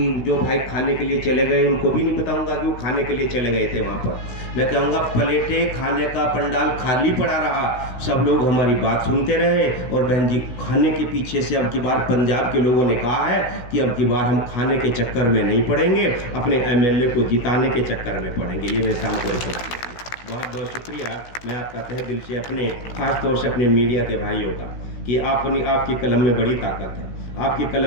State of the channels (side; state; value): right; late; 16 ms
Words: जो भाई खाने के लिए चले गए उनको भी नहीं बताऊंगा कि वो खाने के लिए चले गए थे वहाँ पर। मैं कहूँगा प्लेटें खाने का पंडाल खाली पड़ा रहा, सब लोग हमारी बात सुनते रहे। और बहन जी, खाने के पीछे से अब की बार पंजाब के लोगों ने कहा है कि अब की बार हम खाने के चक्कर में नहीं पड़ेंगे, अपने MLA को जिताने के चक्कर में पड़ेंगे। ये मैं शाम को बहुत बहुत शुक्रिया मैं आपका तहे दिल से, अपने खास तौर से अपने मीडिया के भाइयों का, कि आपकी कलम में बड़ी ताकत है। आपकी